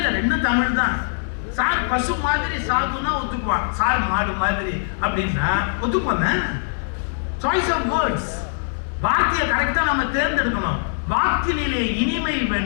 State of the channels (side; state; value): right; silent; digital silence